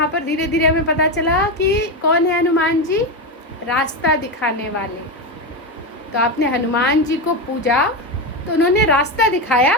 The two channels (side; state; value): both; normal; correlation 0.13